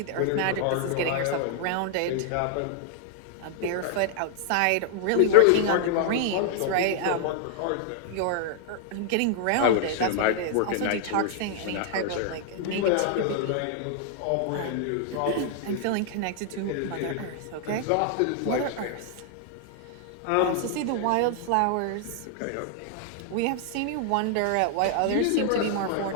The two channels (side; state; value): both; different; correlation 0.00